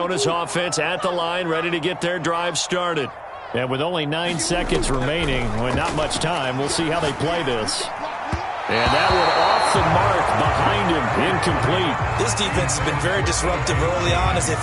offense at the line, ready to get their drive started. And with only 9 seconds remaining, with not much time, we'll see how they play this. And that one off the mark behind him, incomplete. This defense has been very disruptive early on as they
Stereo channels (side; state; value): both; identical; correlation 1.00